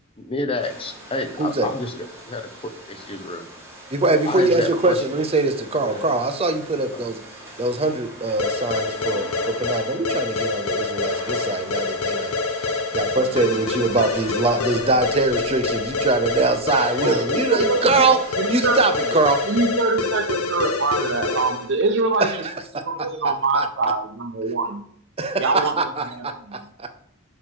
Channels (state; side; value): normal; both; correlation 0.00